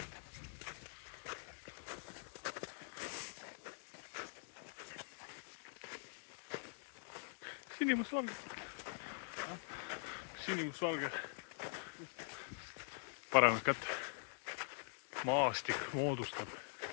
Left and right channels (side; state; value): right; silent; digital silence